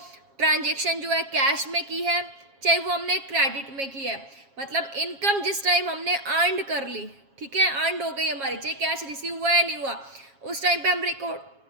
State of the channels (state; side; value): late; left; 7.3 ms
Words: ट्रांजेक्शन जो है कैश में की है, चाहे वो हमने क्रेडिट में की है, मतलब इनकम जिस टाइम हमने अर्न कर ली, ठीक है, अर्न हो गई हमारी, चाहे कैश रिसीव हुआ या नहीं हुआ, उस टाइम पे हम रिकॉर्ड